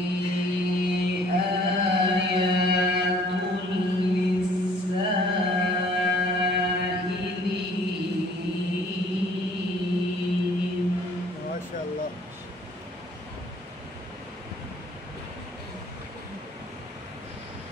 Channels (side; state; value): both; normal; correlation 0.56